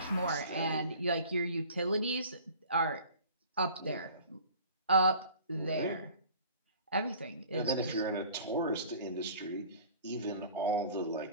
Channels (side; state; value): both; inverted; correlation -0.46